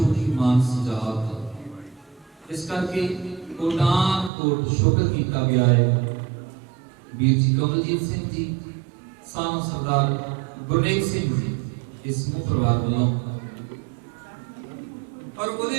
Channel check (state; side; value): drops out; left; at 4.3 s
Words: ਦੀ ਮਾਨਸ ਜਾਤ। ਇਸ ਕਰਕੇ ਕੋਟਾਨ ਕੋਟ ਸ਼ੁਕਰ ਕੀਤਾ ਗਿਆ ਹੈ ਵੀਰ ਜੀ ਕਮਲਜੀਤ ਸਿੰਘ ਜੀ, ਸਾਨੂੰ ਸਰਦਾਰ ਗੁਰਨੇਕ ਸਿੰਘ ਜੀ, ਇਸ ਸਮੂਹ ਪਰਿਵਾਰ ਵੱਲੋਂ। ਔਰ